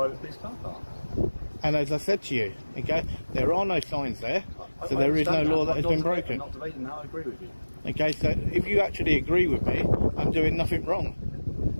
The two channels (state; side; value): inverted; both; correlation -1.00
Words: police car park. And as I said to you, okay, there are no signs there, so there is no law that has been broken. I'm not debating that, I agree with you. Okay, so if you actually agree with me, I'm doing nothing wrong.